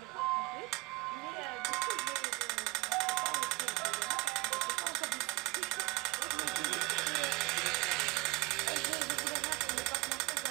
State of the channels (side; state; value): left; quieter; 23.6 dB